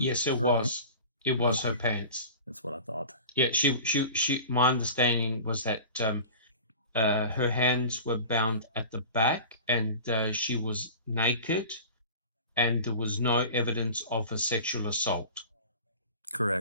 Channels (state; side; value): inverted; both; correlation -0.37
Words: yes, it was. It was her pants. That's what I thought. Yeah, she. My understanding was that her hands were bound at the back, and she was naked, and there was no evidence of a sexual assault.